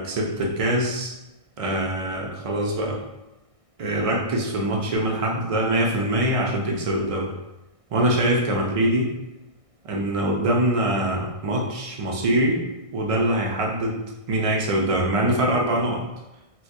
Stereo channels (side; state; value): left; late; 1.6 ms